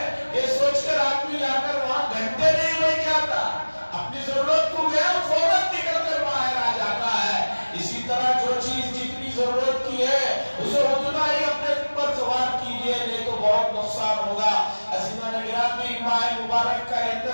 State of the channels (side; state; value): both; inverted; correlation -1.00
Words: یہ سوچ کر آدمی جا کر وہاں گھنٹے نہیں بیٹھ جاتا، اپنی ضرورت کو گیا فوراً نکل کر باہر آ جاتا ہے. اسی طرح جو چیز جتنی ضرورت کی ہے اسے اتنا ہی اپنے اوپر سوار کیجئے، نہیں تو بہت نقصان ہوگا. عزیزان گرامی، ماہ مبارک کا